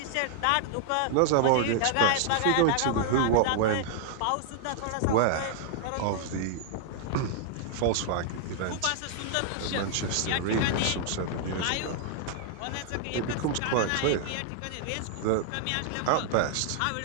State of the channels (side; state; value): both; different; correlation -0.01